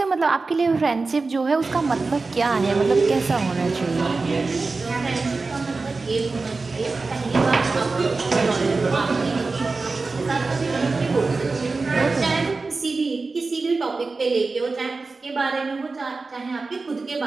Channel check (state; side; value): quieter; left; 3.9 dB